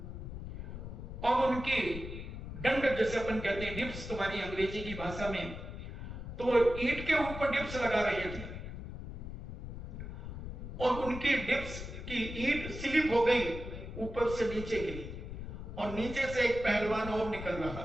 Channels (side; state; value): left; noise; rumble, 8 dB below the sound